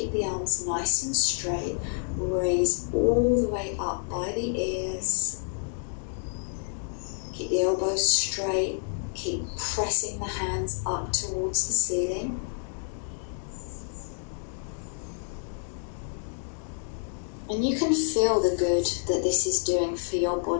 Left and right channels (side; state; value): right; silent; 59 dB below the other